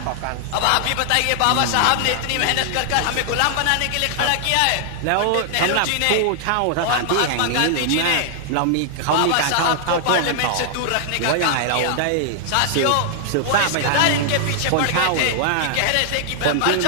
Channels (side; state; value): both; different; correlation -0.01